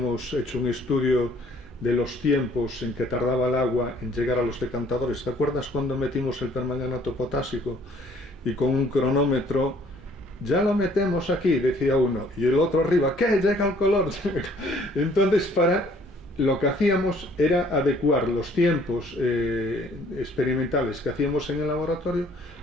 hecho un estudio de los tiempos en que tardaba el agua en llegar a los decantadores. ¿Te acuerdas cuando metimos el permanganato potásico y con un cronómetro, ya lo metemos aquí, decía uno, y el otro arriba, ¿qué? Llega el color. Entonces, lo que hacíamos era adecuar los tiempos experimentales que hacíamos en el laboratorio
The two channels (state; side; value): normal; both; correlation 0.59